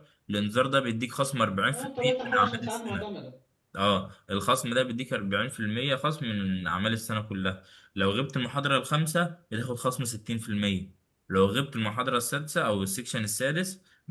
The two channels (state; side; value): identical; both; correlation 1.00